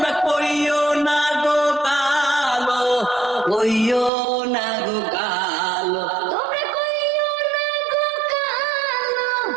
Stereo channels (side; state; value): left; drops out; at 4.1 s